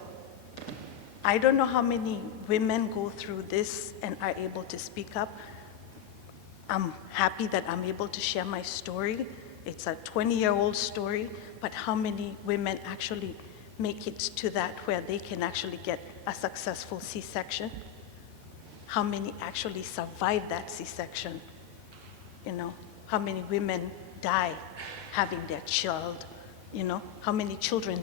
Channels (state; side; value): quieter; right; 10.0 dB